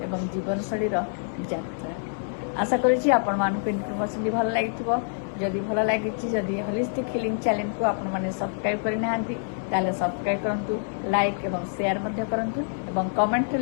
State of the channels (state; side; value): silent; right; 61 dB below the other